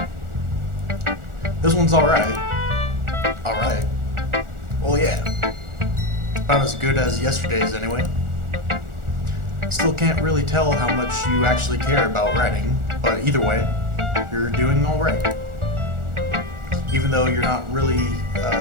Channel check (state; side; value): late; left; 1.4 ms